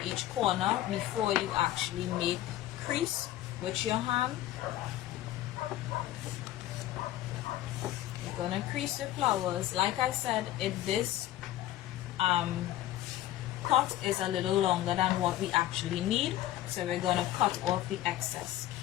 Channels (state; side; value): quieter; right; 13.9 dB